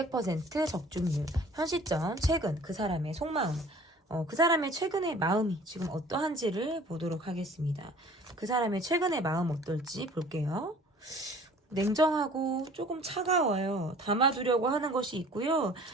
적중률, 현 시점, 최근 그 사람의 속마음, 그 사람의 최근의 마음이 지금 어떠한지를 보도록 하겠습니다. 그 사람의 최근의 마음 어떨지 볼게요. 냉정하고 조금 차가워요. 담아두려고 하는 것이 있고요.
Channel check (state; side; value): normal; both; correlation 0.50